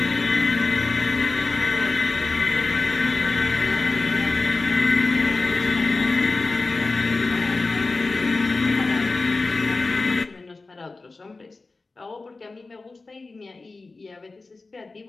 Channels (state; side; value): quieter; right; 3.7 dB